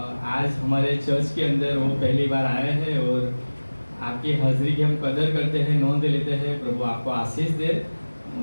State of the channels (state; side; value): inverted; both; correlation -1.00